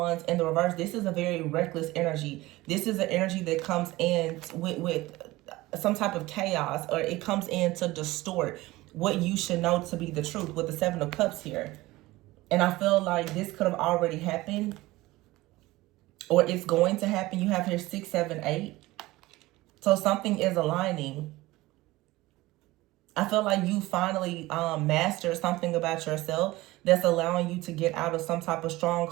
in the reverse, this is a very reckless energy. This is an energy that comes in with some type of chaos, or it comes in to distort what you should know to be the truth with the Seven of Cups here. And I feel like this could have already happened, or it's going to happen. You have here 6, 7, 8. So something is aligning. I feel like you finally mastered something about yourself that's allowing you to get out of some type of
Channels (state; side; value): quieter; left; 19.1 dB